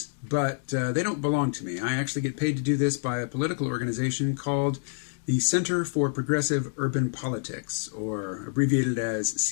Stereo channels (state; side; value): silent; right; digital silence